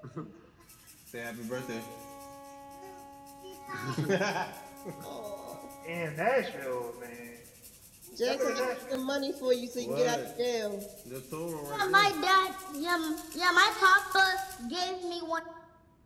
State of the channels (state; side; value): identical; both; correlation 1.00